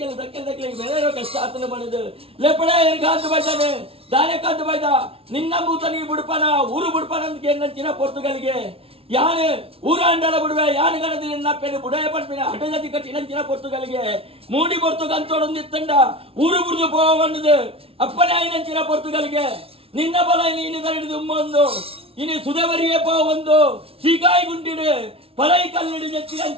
ದಕ್ಕಿಗೆ ಬೇರೆ ಕಷ್ಟ ಆತನ ಬಣದು ಲೆಪಡ ಕಾಂತ ಬೈದಾನೆ ದಾನೆ ಕಾಂತ ಬೈದ ನಿನ್ನ ಬೂತನಿಗೆ ಬಿಡ್ಪನ ಊರು ಬಿಡ್ಪನ ಅಂತ ಕೇಳಿನಂಚಿನ ಪೊರ್ತುಗಳಿಗೆ ಯಾನು ಊರ ಅಂಡಲ ಬಿಡುವೆ ಯಾನು ಗಣದ ನಿನ್ನಪ್ಪೆನು ಬುಡಯ ಪಂಪಿನ ಹಠಜತಿ ಕಟ್ಟಿನಂಚಿನ ಪೊರ್ತುಗಳಿಗೆ ಮೂಡಿ ಪೊರ್ತುಗಂತೊಡೊಂದಿತ್ತಂಡ ಊರು ಬುಡ್ದು ಪೋವನ್ನದು ಅಪ್ಪನೇ ಆಯ್ನಂಚಿನ ಪೊರ್ತುಗಳಿಗೆ ನಿನ್ನ ಬಲ ನೀನು ಕರಡಿದು ಉಮ್ಮೊಂದು ಇನಿ ಸುಧವರಿಯೇ ಪೋ ಒಂದು ಸೀಕಾಯಿ ಗುಂಡಿಡು ಪರೈ ಕಲ್ಲಿಡು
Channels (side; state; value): left; late; 0.27 ms